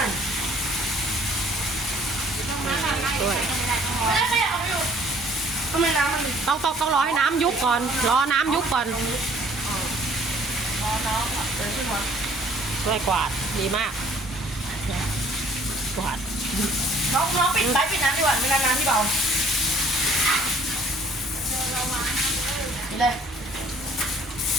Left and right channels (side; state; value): both; normal; correlation 0.57